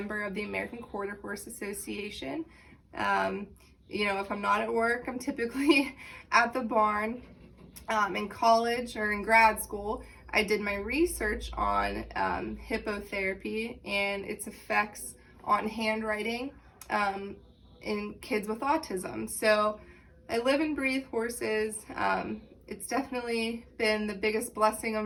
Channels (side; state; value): both; identical; correlation 1.00